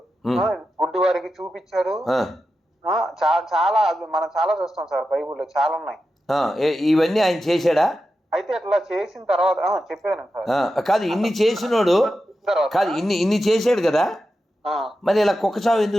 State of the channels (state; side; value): normal; both; correlation 0.90